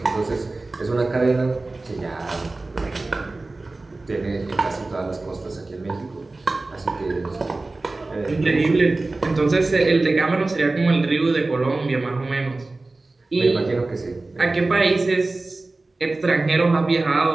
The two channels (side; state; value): left; quieter; 3.2 dB